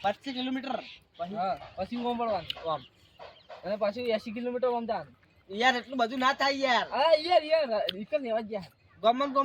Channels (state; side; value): identical; both; correlation 1.00